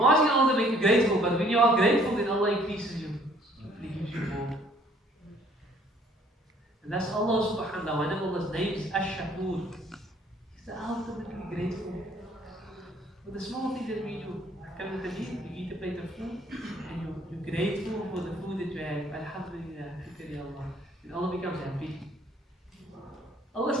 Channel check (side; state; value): both; normal; correlation 0.60